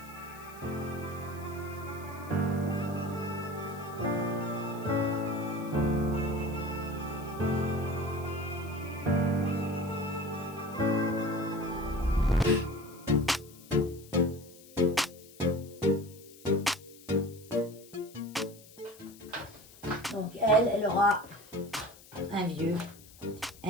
Donc elle aura un vieux,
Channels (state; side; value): noise; left; hiss, 21 dB below the sound